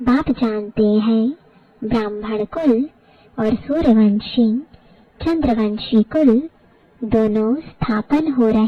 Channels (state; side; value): identical; both; correlation 1.00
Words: बाप जानते हैं ब्राह्मण कुल और सूर्यवंशी चंद्रवंशी कुल दोनों स्थापन हो